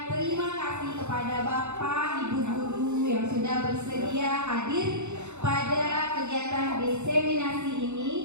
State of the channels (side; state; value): left; late; 0.83 ms